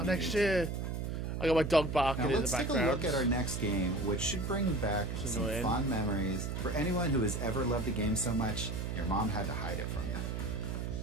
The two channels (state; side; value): noise; right; hum, 3 dB below the sound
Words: Next year. I got my dog barking Now in the let's take a background. look at our next game, which should bring back It's some annoying. fond memories for anyone who has ever loved a game so much your mom had to hide it from you.